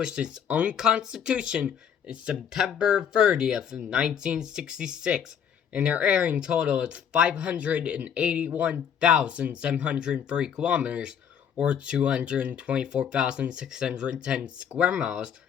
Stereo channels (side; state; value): right; quieter; 8.2 dB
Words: its own constitution in September 30th of 1966, and their area in total is 581,703 kilometers, or 224,610 square miles,